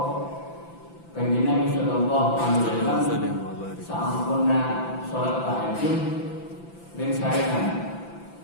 Kanjeng Nabi sallallahu alaihi wasallam sampurna salat tahajud dan sarekan.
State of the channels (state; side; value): late; right; 5.9 ms